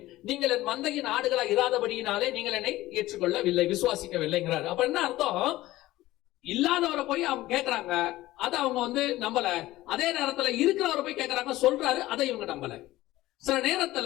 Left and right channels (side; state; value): right; quieter; 16.7 dB